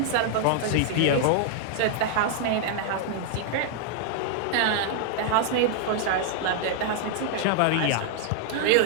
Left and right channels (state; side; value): different; both; correlation 0.00